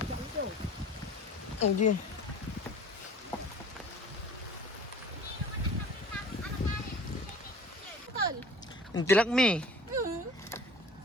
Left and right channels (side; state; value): both; normal; correlation 0.45